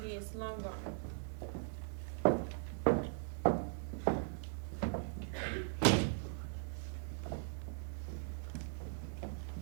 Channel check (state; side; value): silent; left; digital silence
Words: he is long gone.